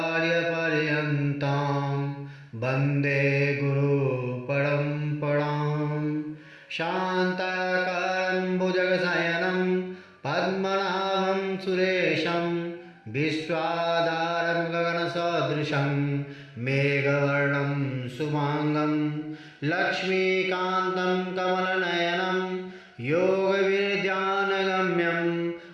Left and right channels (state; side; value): identical; both; correlation 1.00